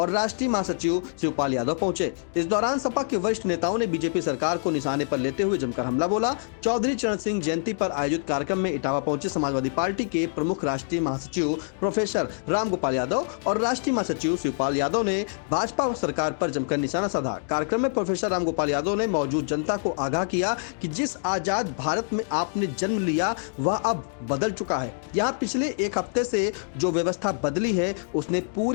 राष्ट्रीय महासचिव शिवपाल यादव पहुंचे। इस दौरान सपा के वरिष्ठ नेताओं ने बीजेपी सरकार को निशाने पर लेते हुए जमकर हमला बोला। चौधरी चरण सिंह जयंती पर आयोजित कार्यक्रम में इटावा पहुंचे समाजवादी पार्टी के प्रमुख राष्ट्रीय महासचिव प्रोफेसर रामगोपाल यादव और राष्ट्रीय महासचिव शिवपाल यादव ने भाजपा सरकार पर जमकर निशाना साधा। कार्यक्रम में प्रोफेसर रामगोपाल यादव ने मौजूद जनता को आगाह किया कि जिस आजाद भारत में आपने जन्म लिया वह अब बदल चुका है। यहाँ पिछले एक हफ्ते से जो व्यवस्था बदली है उसने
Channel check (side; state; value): right; silent; digital silence